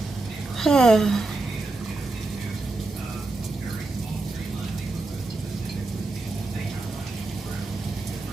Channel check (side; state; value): left; quieter; 3.2 dB